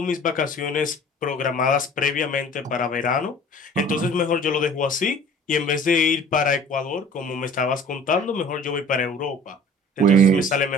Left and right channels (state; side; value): normal; both; correlation 0.47